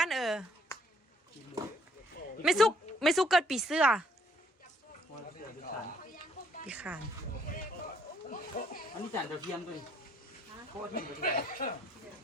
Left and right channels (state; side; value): normal; both; correlation 0.66